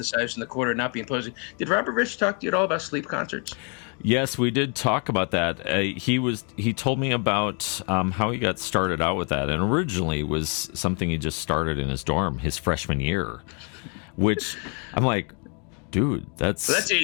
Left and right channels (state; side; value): quieter; right; 37.2 dB